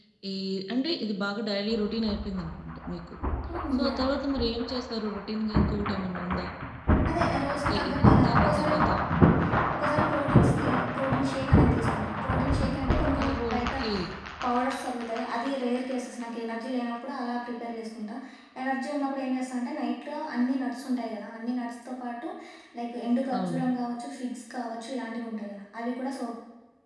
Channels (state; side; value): identical; both; correlation 1.00